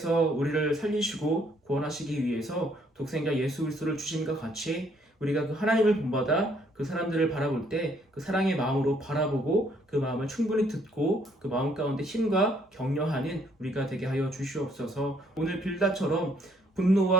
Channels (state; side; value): normal; both; correlation 0.67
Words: 우리를 살리시고 구원하시기 위해서 독생자 예수 그리스도를 주심과 같이 우리가 그 하나님을 본받아 그 사람들을 바라볼 때 그 사랑의 마음으로 바라보고 그 마음을 충분히 듣고 그 마음 가운데 힘과 격려하는 우리가 되게 하여 주시옵소서. 오늘 빌닷처럼